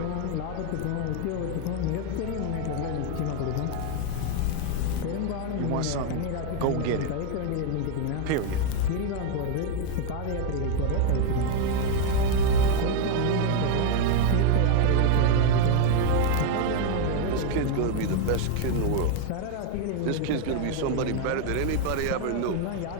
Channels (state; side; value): different; both; correlation 0.01